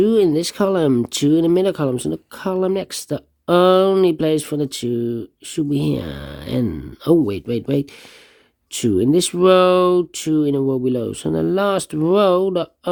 in this column. 2 in the middle column. So the column next, the only place for the 2 should be here. And oh, wait. 2 in this row, 2 in a row below. So in the last row, the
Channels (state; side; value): identical; both; correlation 1.00